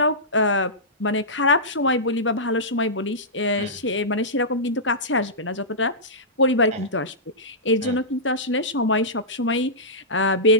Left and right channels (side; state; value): both; normal; correlation -0.17